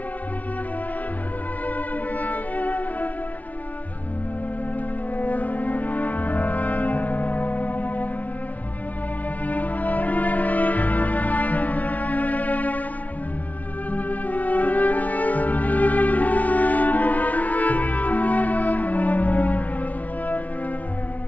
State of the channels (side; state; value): right; late; 0.072 ms